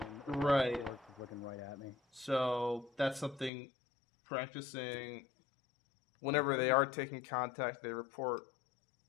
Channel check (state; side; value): drops out; right; at 3.5 s